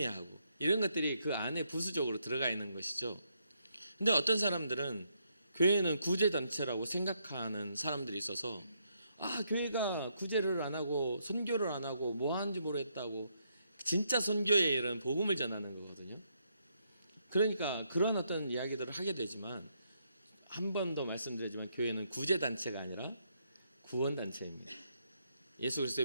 이런 것들이 그 안에 부수적으로 들어가 있는 것이죠. 근데 어떤 사람들은 교회는 구제단체라고 생각하는 사람들이 있어서 교회가 구제를 안 하고 선교를 안 하고 뭐 하는지 모르겠다고 진짜 선교의 일은 복음을 전하는 거거든요. 그러니까 그런 어떤 이야기들을 하게 되지만 한 번 더 말씀드리지만 교회는 구제단체가 아니라 구원단체입니다. 예수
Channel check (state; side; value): inverted; both; correlation -0.76